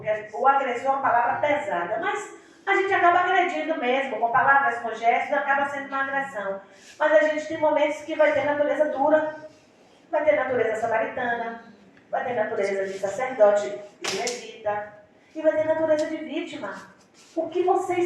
o agressor é uma palavra pesada, mas a gente acaba agredindo mesmo, com palavras, com gestos, acaba sendo uma agressão. Mas a gente tem momentos que vai ter natureza dura, vai ter natureza samaritana, vai ter natureza de sacerdote e levita, e vai ter natureza de vítima. O que você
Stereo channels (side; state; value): both; identical; correlation 1.00